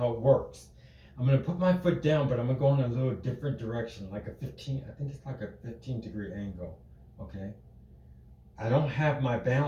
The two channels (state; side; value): identical; both; correlation 1.00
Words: it works. I'm going to put my foot down, but I'm going to go in a little different direction, like I think it's like a 15-degree angle, okay? I don't have my